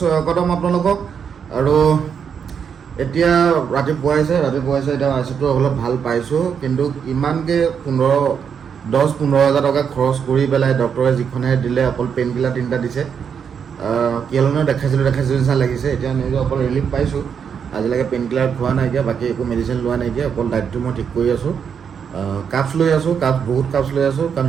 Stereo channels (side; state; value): left; quieter; 7.1 dB